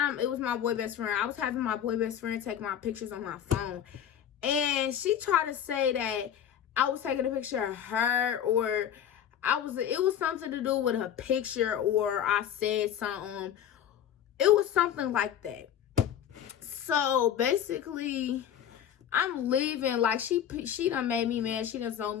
it was my boy best friend. I was having my boy best friend take my pictures on my phone. And she tried to say that I was taking a picture of her, or it was something to do with her picture, or I said something. It was something like that. So basically, I'm leaving. Like, she done made me mad. She done zoned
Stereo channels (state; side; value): quieter; right; 9.7 dB